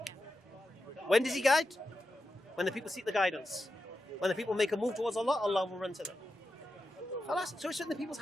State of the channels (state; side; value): normal; both; correlation 0.89